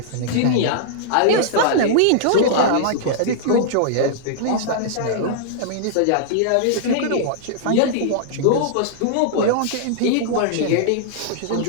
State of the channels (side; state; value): both; different; correlation -0.01